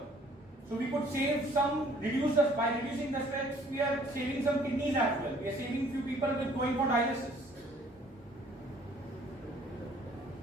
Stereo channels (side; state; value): both; normal; correlation 0.58